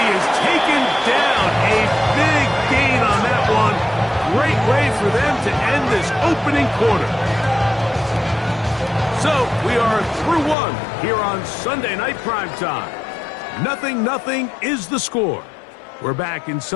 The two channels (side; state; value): right; drops out; at 10.6 s